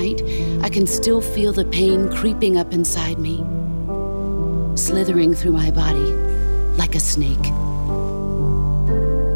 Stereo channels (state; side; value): inverted; both; correlation -1.00